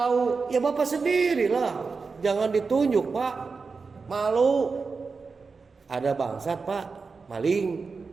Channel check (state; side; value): quieter; left; 4.7 dB